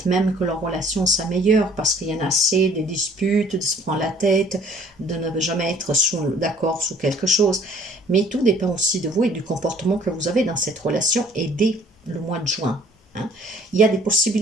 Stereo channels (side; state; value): both; normal; correlation 0.56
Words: même que leur relation s'améliore parce qu'il y en a assez des disputes, de se prendre la tête, de ne jamais être d'accord sur quelque chose. Mais tout dépend aussi de vous et du comportement que vous avez dans cette relation et dès le mois de juin. Hein. Il y a des